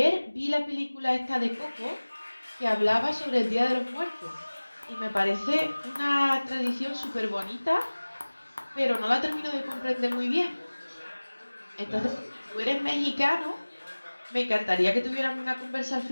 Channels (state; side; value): inverted; both; correlation -1.00